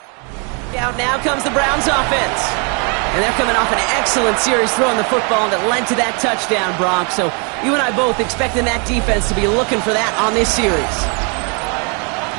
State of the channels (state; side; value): quieter; left; 35.5 dB